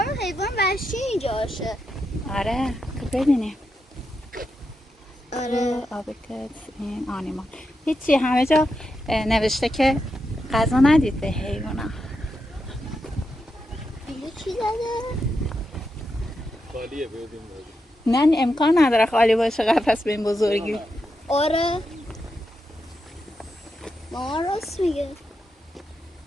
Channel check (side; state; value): both; normal; correlation 0.86